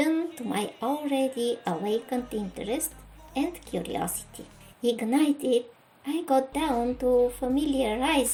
to my already awakened interest and curiosity. Ignited, I got down to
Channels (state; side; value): identical; both; correlation 1.00